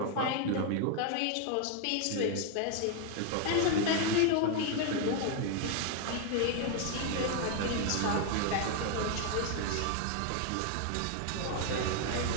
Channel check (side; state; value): both; different; correlation 0.00